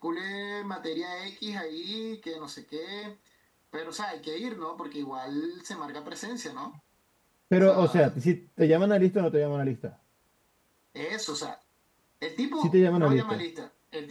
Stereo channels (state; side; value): identical; both; correlation 1.00